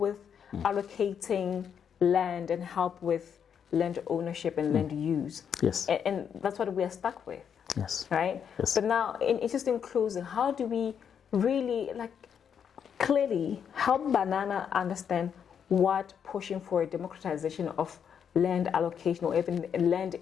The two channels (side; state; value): right; quieter; 7.8 dB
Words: allocating land and help with land ownership and land use. And that's what we are stuck with. Right? But now, in just in closing, how do we really clearly help Banana understand what pushing for a democratization of land allocation or even